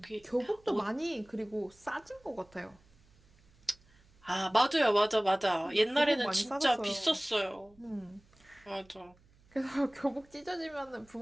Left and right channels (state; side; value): noise; right; hum, 30 dB below the sound